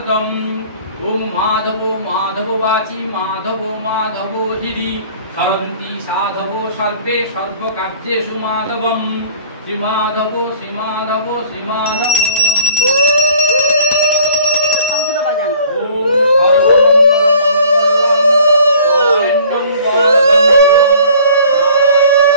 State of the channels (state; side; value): inverted; both; correlation -0.53